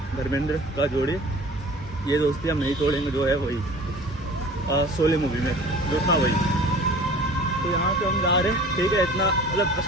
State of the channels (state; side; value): normal; both; correlation 0.44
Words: धर्मेंद्र का जोड़ी। ये दोस्ती हम नहीं तोड़ेंगे, जो है वही शोले मूवी में जो था वही। तो यहाँ पे हम जा रहे हैं, ठीक है। इतना मतलब